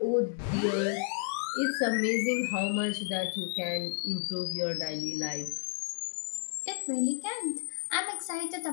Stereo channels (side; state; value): right; silent; 57 dB below the other